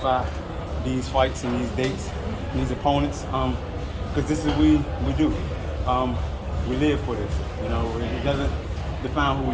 these fights and these dates, and these opponents, because this is what we do. We live for this. It doesn't define who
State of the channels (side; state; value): both; identical; correlation 1.00